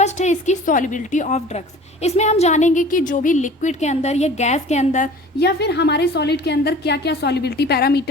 है इसकी सॉल्युबिलिटी ऑफ ड्रग्स। इसमें हम जानेंगे कि जो भी लिक्विड के अंदर या गैस के अंदर या फिर हमारे सॉलिड के अंदर क्या क्या सॉल्युबिलिटी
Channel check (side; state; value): both; normal; correlation 0.44